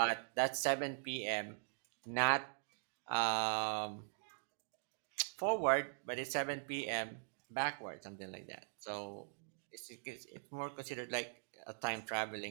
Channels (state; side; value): silent; left; digital silence